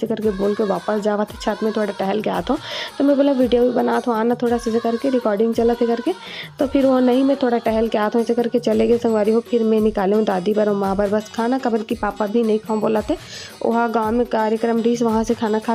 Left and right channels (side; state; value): both; identical; correlation 1.00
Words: करके बोल के वापस जावा थे छत में थोड़ा टहल के आता हूँ। तो मैं बोला वीडियो भी बना तो आना थोड़ा सा करके रिकॉर्डिंग चला थे करके, तो फिर वो नहीं मैं थोड़ा टहल के आता हूँ ऐसे करके चले गए संगवारी हो। फिर मैं निकाले हूँ दादी बर और माँ बर बस खाना, कबर की पापा भी नहीं खाऊँ बोला थे। वहाँ गाँव में कार्यक्रम रही, वहाँ से खाना